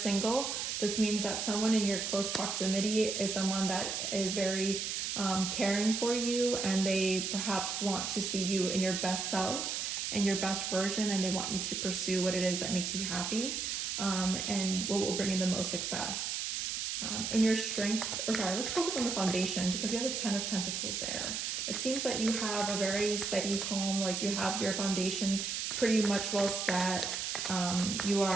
this means that someone in your close proximity is someone that is very caring for you, and they perhaps want to see you in your best self and your best version, and they want you to pursue what it is that makes you happy and what will bring you the most success. In your strength, let's focus on the foundation, because we have the Ten of Pentacles there. It seems that you have a very steady home, like you have your foundation pretty much well set. You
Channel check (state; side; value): noise; right; hiss, 2 dB below the sound